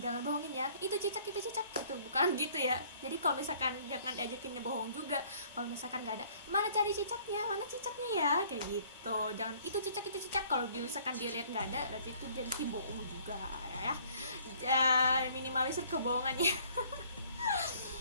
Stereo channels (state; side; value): inverted; both; correlation -0.58